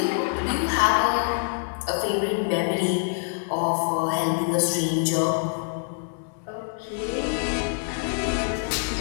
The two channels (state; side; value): silent; right; digital silence